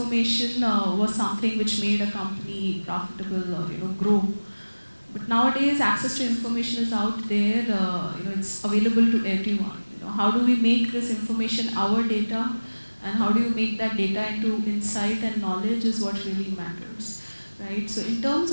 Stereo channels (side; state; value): both; inverted; correlation -1.00